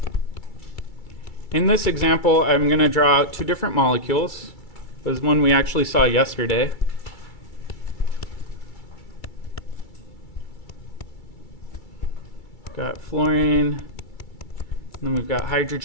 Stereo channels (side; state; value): right; late; 2.3 ms